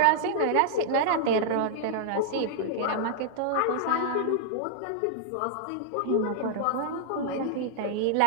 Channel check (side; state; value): both; different; correlation -0.01